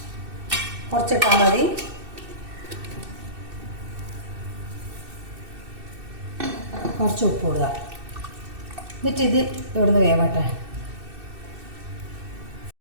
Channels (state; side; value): late; left; 2.6 ms